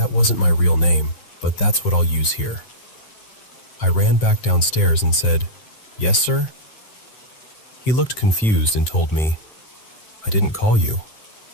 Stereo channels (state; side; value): late; right; 7.6 ms